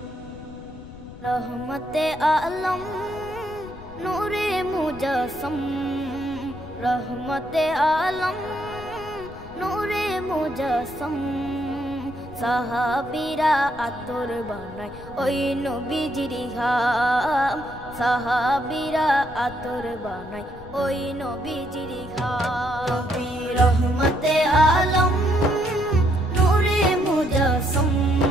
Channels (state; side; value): noise; left; rumble, 16 dB below the sound